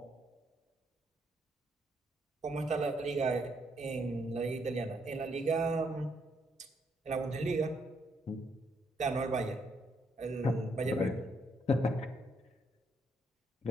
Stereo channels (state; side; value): normal; both; correlation 0.74